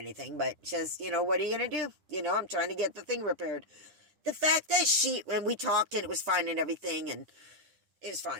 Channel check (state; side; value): late; left; 9.9 ms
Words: But says, what are you going to do? I'm trying to get the thing repaired. The fact that when we talked and it was fine and everything, and it was